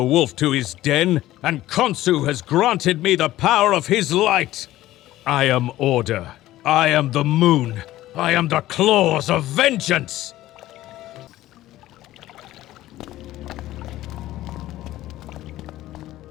wolf to his den, and Khonsu has granted me the power of his light. I am order. I am the moon. I am the claws of vengeance.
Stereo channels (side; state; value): right; quieter; 15.3 dB